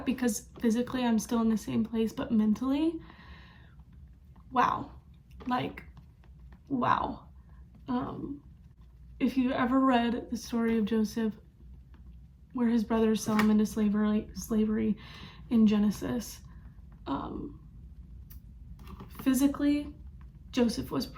because physically I'm still in the same place, but mentally, wow. If you've ever read the story of Joseph, where his brothers sell him into slavery in Genesis, physically, Joseph was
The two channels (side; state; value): both; identical; correlation 1.00